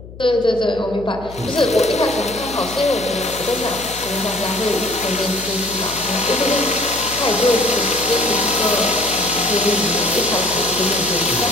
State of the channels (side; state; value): left; noise; hum, 16 dB below the sound